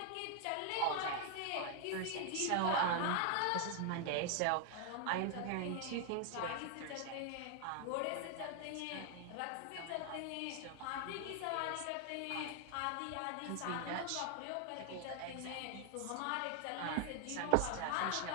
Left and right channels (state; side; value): different; both; correlation 0.00